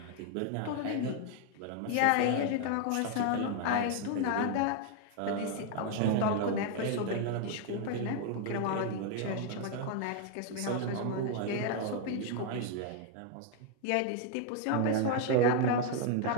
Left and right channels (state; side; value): different; both; correlation 0.00